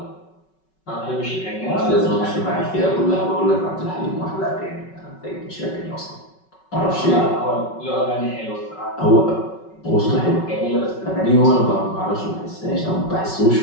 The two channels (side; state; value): right; late; 5.3 ms